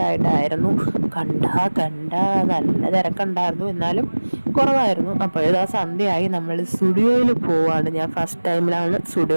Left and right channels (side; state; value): both; inverted; correlation -1.00